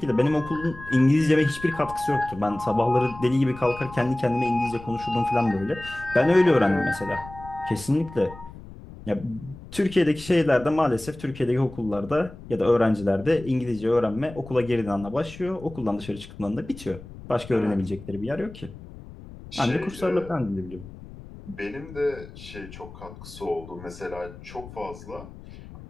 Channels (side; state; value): left; noise; rumble, 16 dB below the sound